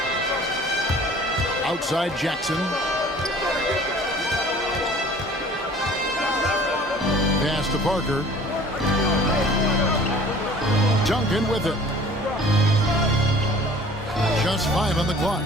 Outside Jackson. Pass to Parker. Duncan with it. Just 5 on the clock.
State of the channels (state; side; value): normal; both; correlation 0.49